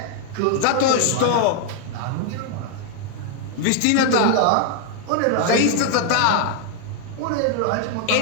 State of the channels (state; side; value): different; both; correlation 0.00